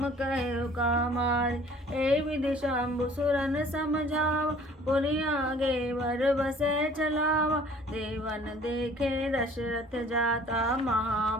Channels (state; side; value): normal; both; correlation 0.52